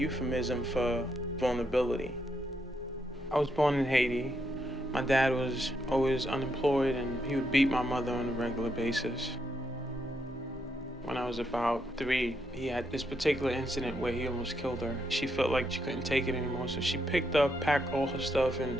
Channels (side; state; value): both; normal; correlation 0.79